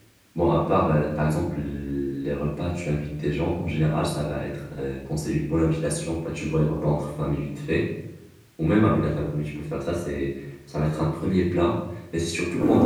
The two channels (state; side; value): identical; both; correlation 1.00